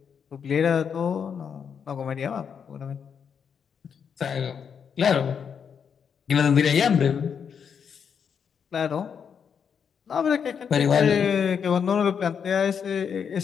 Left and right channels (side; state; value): right; quieter; 7.1 dB